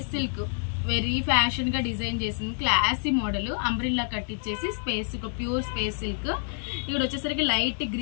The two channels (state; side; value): silent; right; 60 dB below the other